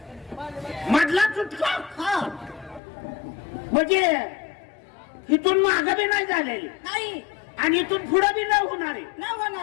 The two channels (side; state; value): right; drops out; at 2.8 s